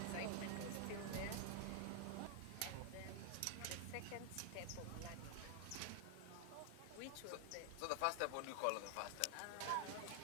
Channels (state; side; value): different; both; correlation 0.00